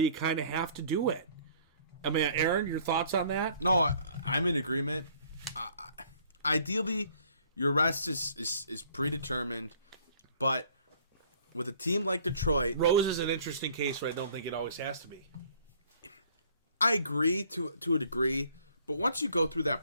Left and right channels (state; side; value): inverted; both; correlation -0.58